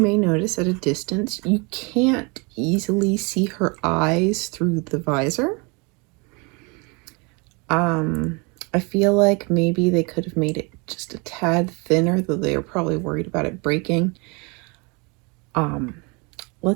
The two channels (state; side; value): quieter; left; 30.1 dB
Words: notice at a distance, you can't easily see her eyes through the visor. I feel like maybe they could have made it just a tad thinner, though they were probably worried about it breaking.